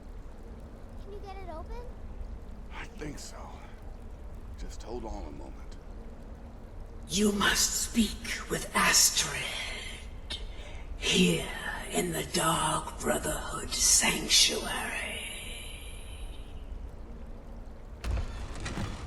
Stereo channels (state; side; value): identical; both; correlation 1.00